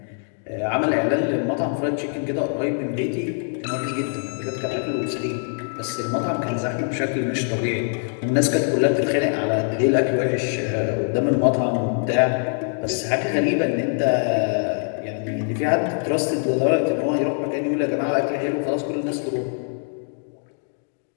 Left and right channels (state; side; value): silent; right; 58 dB below the other